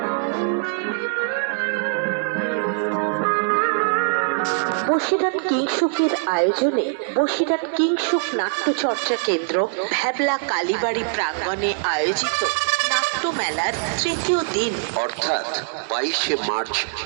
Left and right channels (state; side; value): silent; left; digital silence